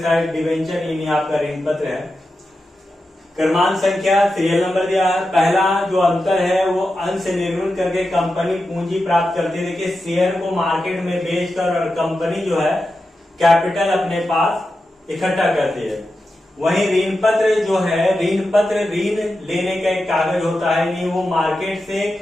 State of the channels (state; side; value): normal; both; correlation 0.90